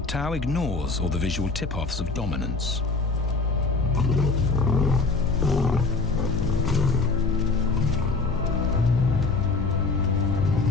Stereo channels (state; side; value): quieter; right; 3.9 dB